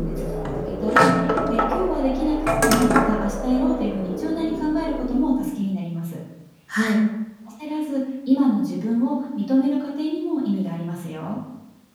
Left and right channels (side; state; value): both; identical; correlation 1.00